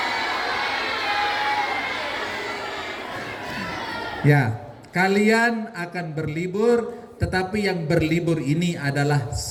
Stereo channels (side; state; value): both; identical; correlation 1.00